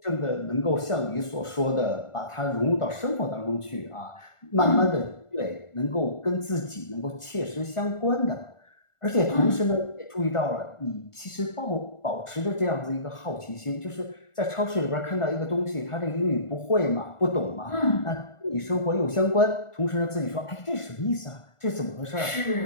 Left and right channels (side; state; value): right; late; 1.4 ms